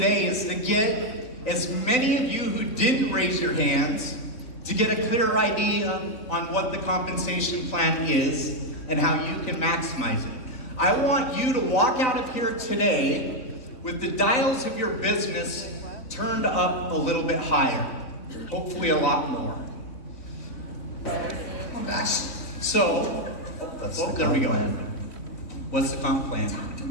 is to get as many of you who didn't raise your hands to get a clear idea on what the compensation plan is and how you can maximize it. I want you to walk out of here today with the dials of your business turned up a little bit higher, hopefully a lot more. So, there we go. What's the comp plan?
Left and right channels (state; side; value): late; right; 3.9 ms